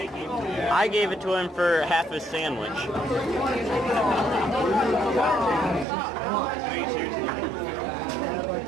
I gave it to him for half his sandwich.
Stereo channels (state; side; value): drops out; left; at 5.9 s